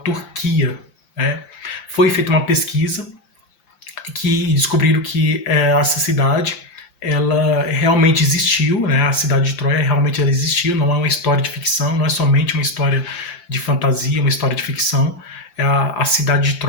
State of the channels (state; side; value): late; right; 5.8 ms